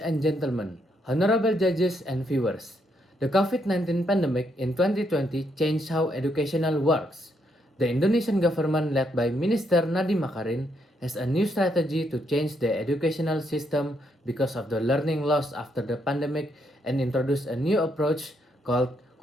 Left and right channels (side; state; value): both; normal; correlation 0.76